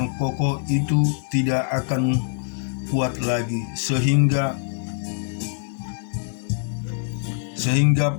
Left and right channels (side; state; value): right; silent; digital silence